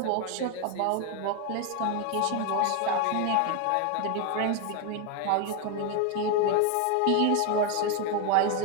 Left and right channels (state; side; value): different; both; correlation 0.01